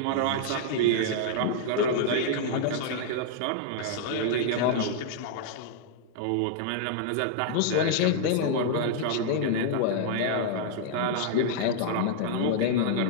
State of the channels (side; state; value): both; different; correlation -0.01